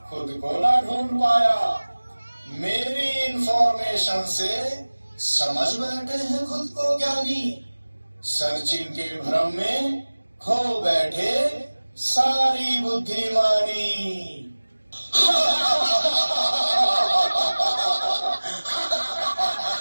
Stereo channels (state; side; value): inverted; both; correlation -1.00